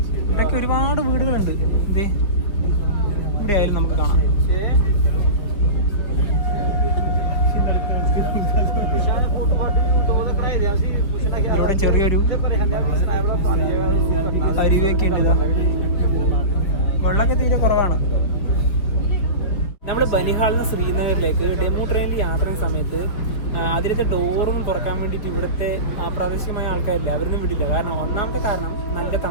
ഇവിടെയൊക്കെ ഒരുപാട് വീടുകളുണ്ട്. എന്തേ ഇവിടെ ആയാലും നമുക്ക് കാണാം. ഇതിലൂടെ ചെറിയൊരു അരുവിയൊക്കെ ഉണ്ട്. ഇതാ വെള്ളമൊക്കെ തീരെ കുറവാണ്. നമ്മൾ ബനിഹാളിൽ നിന്ന് ശ്രീനഗറിലേക്ക് ഡെമു ട്രെയിനിൽ യാത്ര ചെയ്യുന്ന സമയത്ത് അതിലത്തെ ഡോറൊന്നും തുറക്കാൻ വേണ്ടിയിട്ട് ഇവിടുത്തെ പ്രാദേശികമായ ആൾക്കാരില്ല, അവരൊന്നും വിടില്ല. കാരണം ഒന്നാമത്തെ കാരണം നല്ല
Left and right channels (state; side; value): late; right; 5.0 ms